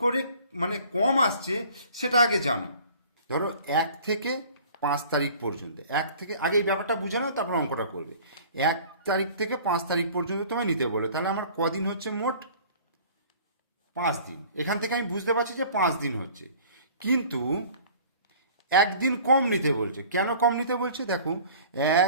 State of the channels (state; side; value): inverted; both; correlation -0.49